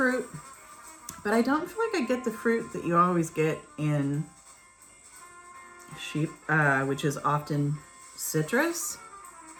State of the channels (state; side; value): identical; both; correlation 1.00